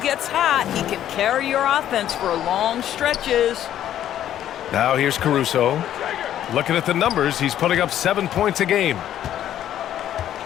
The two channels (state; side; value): quieter; right; 11.4 dB